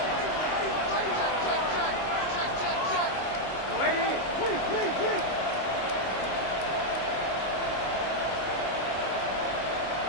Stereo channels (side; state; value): right; late; 26 ms